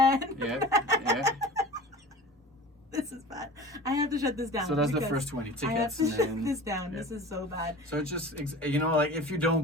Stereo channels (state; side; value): normal; both; correlation 0.38